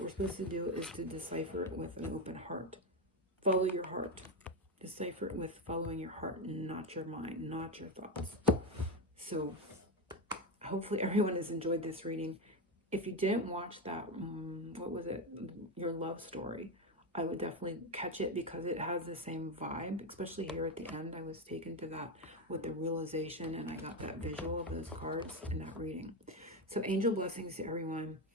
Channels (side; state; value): both; normal; correlation 0.12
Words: we're supposed to do is to decipher it with an open heart. Follow your heart. Decipher it with following your heart, not your mind, not your thoughts. So hopefully everyone has enjoyed this reading. If you didn't watch that, what was it? Your Love Story. I would definitely catch it because it has the same vibe, especially here at the end. I was taken to that with the realization and I got that visual of those cards in that reading. So angel blessings to everyone.